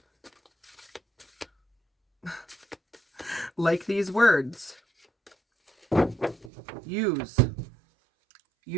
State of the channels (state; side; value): drops out; left; at 6.5 s